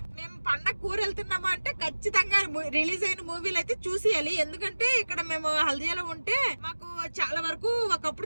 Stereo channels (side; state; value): both; inverted; correlation -1.00